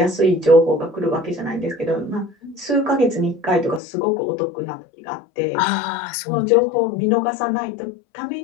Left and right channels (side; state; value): right; drops out; at 3.8 s